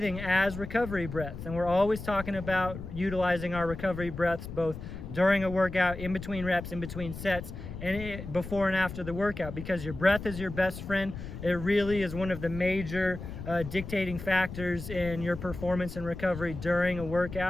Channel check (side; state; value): left; noise; rumble, 10 dB below the sound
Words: as recovery breaths. And we're always talking about utilizing our recovery breaths both during a workout, in between reps, in between sets, and before and after the workout, because your breath is your best friend. It really is one of the major dictating factors in your performance and recovery during a